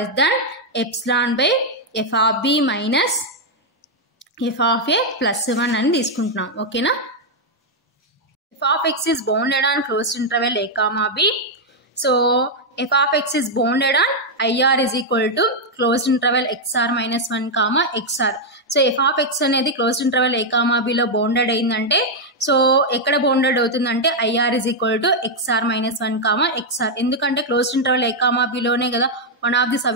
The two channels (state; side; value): normal; both; correlation -0.01